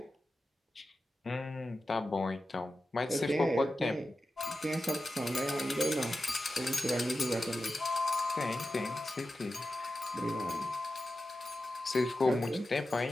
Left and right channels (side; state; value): both; normal; correlation 0.92